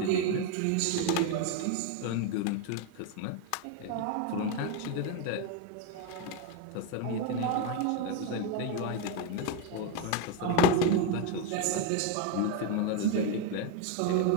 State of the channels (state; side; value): different; both; correlation 0.02